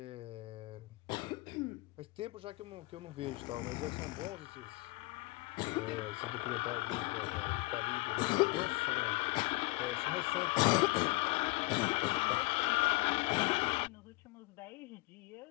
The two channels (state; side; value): quieter; right; 23.1 dB